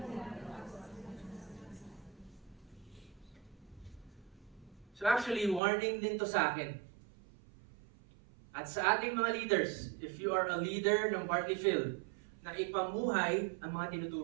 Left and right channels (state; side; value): drops out; left; at 5.6 s